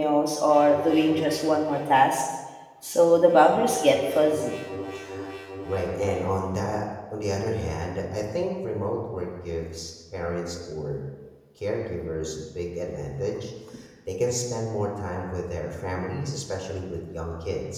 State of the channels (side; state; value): both; identical; correlation 1.00